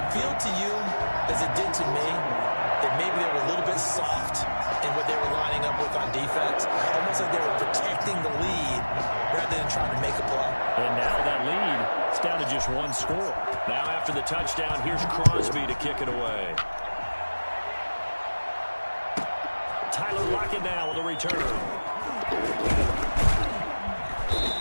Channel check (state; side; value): inverted; both; correlation -1.00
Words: feel to you, as it did to me, that maybe they were a little bit soft in what they were lining up with on defense? Almost like they were protecting the lead rather than trying to make a play. And now that lead, it's down to just 1 score. Now after the touchdown, here's Crosby to kick it away. Tyler Lockett now with a return.